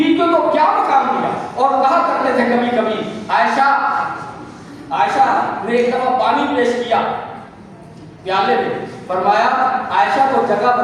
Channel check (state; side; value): identical; both; correlation 1.00